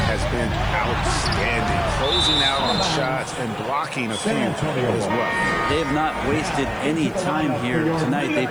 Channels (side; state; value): right; noise; hiss, 30 dB below the sound